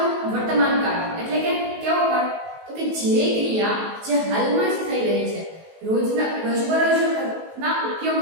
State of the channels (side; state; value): left; late; 19 ms